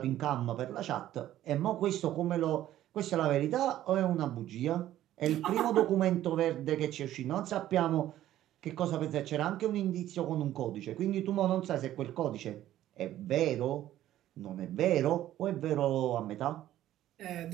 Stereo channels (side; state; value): left; quieter; 13.1 dB